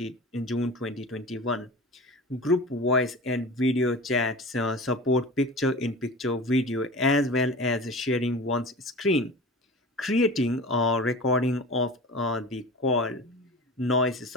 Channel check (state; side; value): normal; both; correlation 0.35